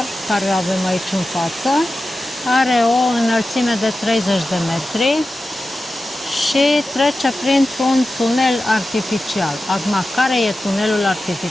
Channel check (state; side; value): normal; both; correlation 0.93